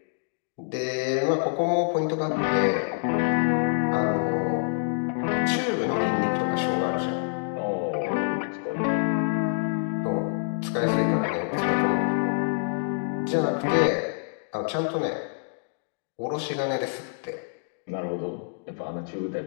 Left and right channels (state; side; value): silent; right; digital silence